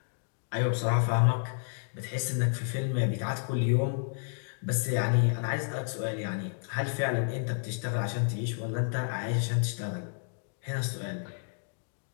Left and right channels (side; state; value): right; silent; digital silence